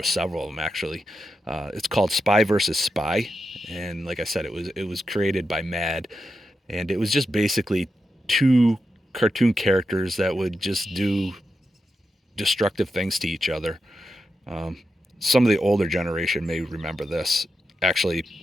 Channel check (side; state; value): both; normal; correlation 0.88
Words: several of them actually. It's called Spy versus Spy, and like I said, it was created by Mad, and it was just basically two cartoon characters that would just do destructive things to each other. Some of the older generation may remember this. Actually,